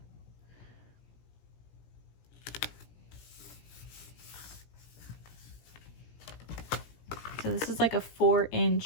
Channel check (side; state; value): right; late; 17 ms